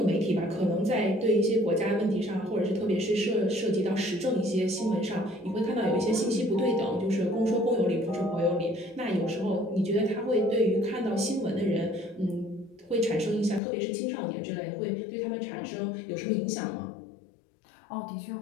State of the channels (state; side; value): drops out; right; at 13.6 s